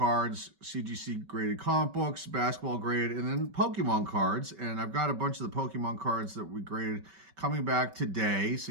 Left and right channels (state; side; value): late; left; 5.2 ms